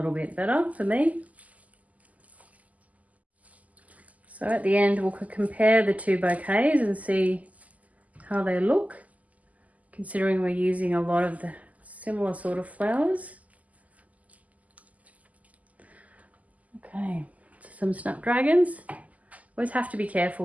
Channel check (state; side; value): late; left; 0.075 ms